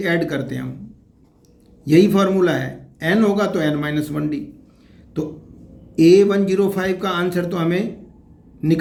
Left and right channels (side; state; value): both; identical; correlation 1.00